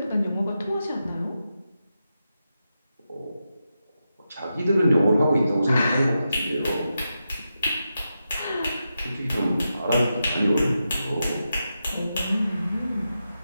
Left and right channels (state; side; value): inverted; both; correlation -0.88